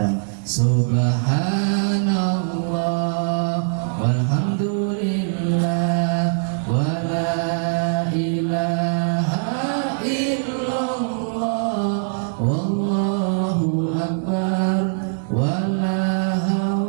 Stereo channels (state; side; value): silent; left; digital silence